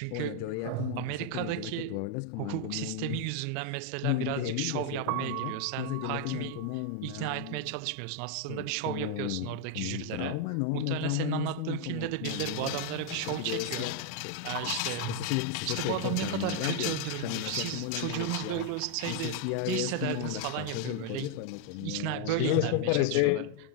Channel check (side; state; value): both; different; correlation 0.01